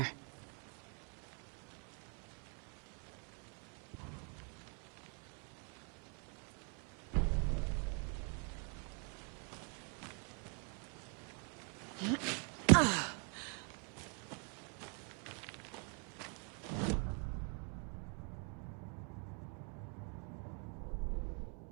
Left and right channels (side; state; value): left; quieter; 38.9 dB